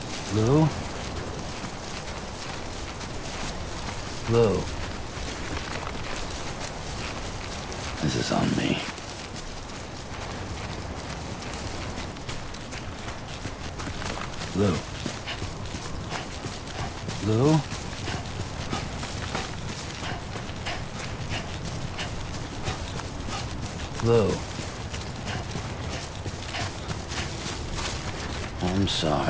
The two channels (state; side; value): identical; both; correlation 1.00